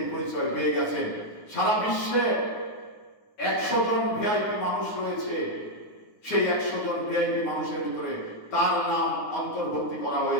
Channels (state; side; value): late; right; 9.5 ms